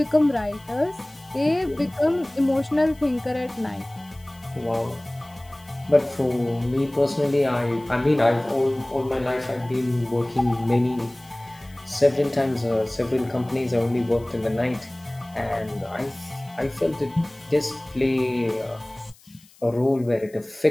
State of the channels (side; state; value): left; noise; hiss, 27 dB below the sound